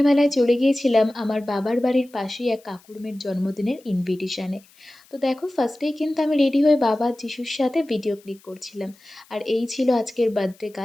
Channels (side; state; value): left; noise; hiss, 29 dB below the sound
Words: চলে গিয়েছিলাম আমার বাবার বাড়ির পাশেই এক কাকুর মেয়ের জন্মদিনের ইনভিটেশনে। তো দেখো, ফার্স্টেই কিন্তু আমি রেডি হয়ে বাবা যিশুর সাথে ভিডিও ক্লিক করছিলাম। আর এই ছিল আজকের বার্থডে